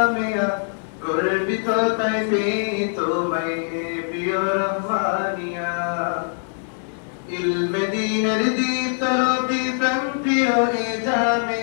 গর্বিত তাই পেয়ে তোমায় হে প্রিয় রহমানিয়া المدينة দীপ্ত রবি প্রাণ প্রিয় এ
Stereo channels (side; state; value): right; silent; digital silence